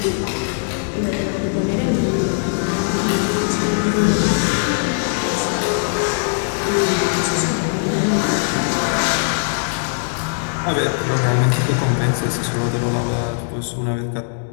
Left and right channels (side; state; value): right; silent; digital silence